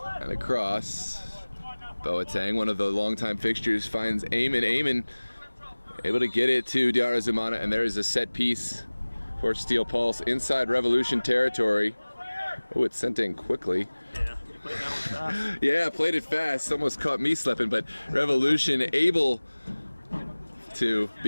And across. Boateng, one of the longtime fixtures, finds Eamon. Eamon able to get it to Diarzumana, and there is a set piece for Steel Pulse inside Revolution territory. Oh, it's sent in quickly. Yeah, played that one fast. Yeah, played it fast. Almost caught me slipping, but Revolution able to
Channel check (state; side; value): inverted; both; correlation -1.00